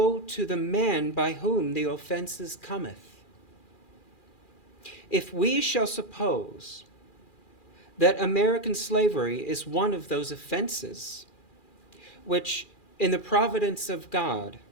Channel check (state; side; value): late; right; 2.4 ms